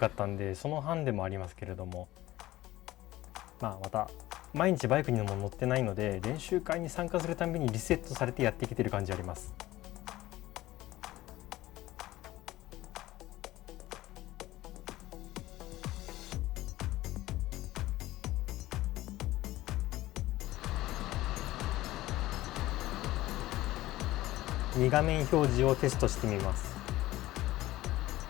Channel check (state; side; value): quieter; right; 16.6 dB